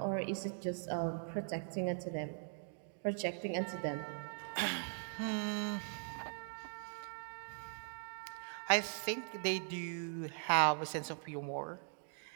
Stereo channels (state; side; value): silent; left; digital silence